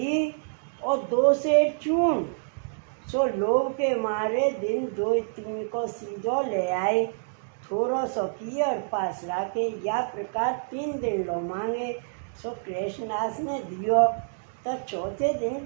और 2 शेर चून। सो लोभ के मारे दिन 2-3 को सीधो ले आए। थोड़ो सो किए और पास रखे। या प्रकार 3 दिन लो मांगे। सो कृष्णदास ने दियो। तो चौथे दिन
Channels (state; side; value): silent; left; digital silence